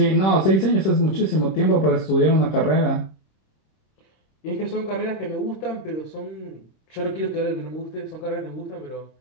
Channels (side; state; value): right; late; 26 ms